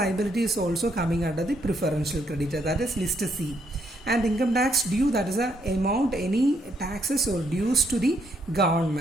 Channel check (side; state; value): both; normal; correlation 0.74